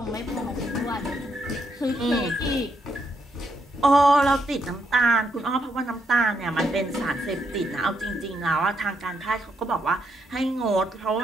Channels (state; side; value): normal; both; correlation 0.78